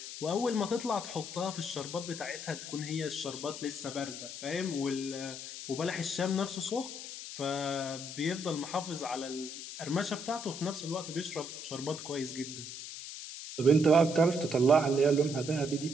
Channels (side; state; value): left; noise; hiss, 9 dB below the sound